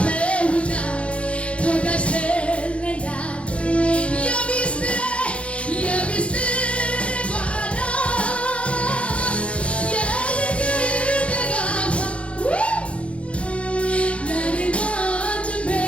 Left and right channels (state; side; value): late; right; 0.061 ms